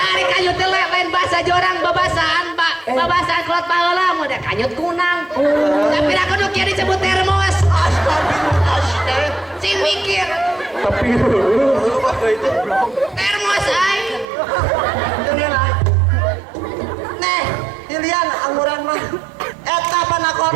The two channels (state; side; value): drops out; left; at 14.2 s